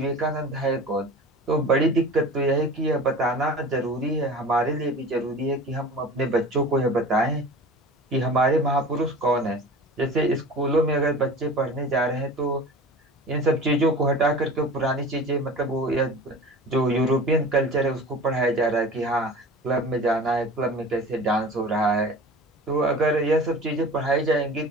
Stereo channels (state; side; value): normal; both; correlation 0.38